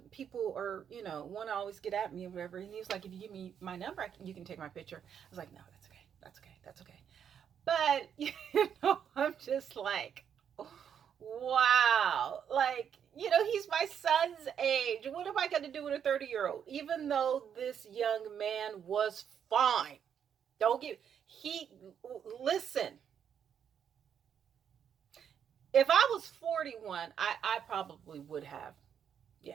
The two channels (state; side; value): quieter; left; 8.3 dB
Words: people are, want to always get at me or whatever. And he was like, if you give me my number, you can take my picture. I was like, no, that's okay. But, I'm just like, wow, like, he's my son's age. What am I going to do with a 30-year-old? Even though this young man was fine. Listen, if I was 41, I probably would have.